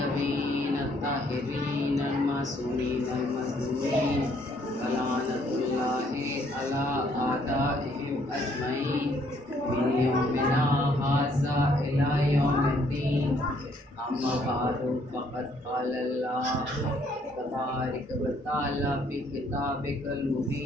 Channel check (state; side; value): normal; both; correlation 0.66